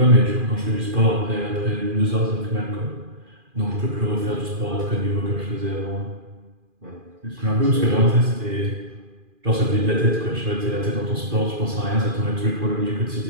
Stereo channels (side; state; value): left; late; 2.4 ms